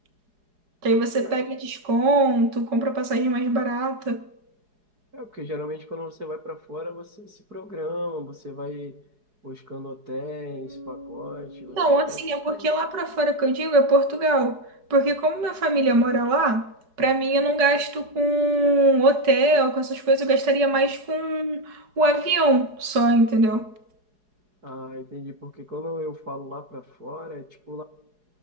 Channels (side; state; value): left; late; 4.8 ms